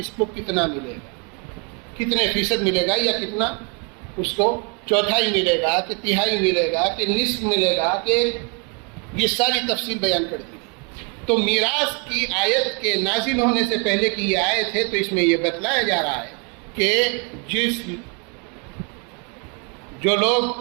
کو کتنا ملے گا، کتنے فیصد ملے گا، یا کتنا اس کو چوتھائی ملے گا کہ تہائی ملے گا کہ نصف ملے گا، کہ یہ ساری تفصیل بیان کر دی۔ تو میراث کی آیت کے نازل ہونے سے پہلے کی یہ آیت ہے، تو اس میں یہ بتلایا جا رہا ہے کہ جو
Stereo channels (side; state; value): left; quieter; 34.8 dB